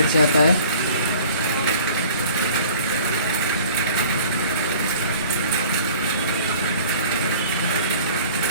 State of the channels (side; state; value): both; inverted; correlation -0.48